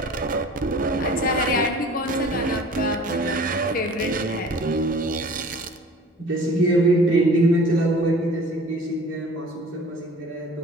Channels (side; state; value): both; normal; correlation 0.45